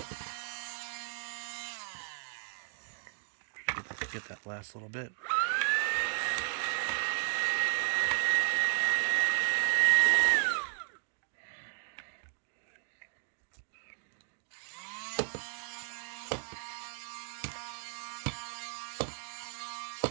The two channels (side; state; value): left; silent; 55 dB below the other